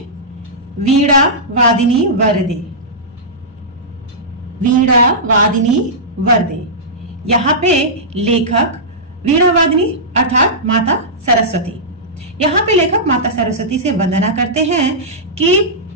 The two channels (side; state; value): both; normal; correlation -0.14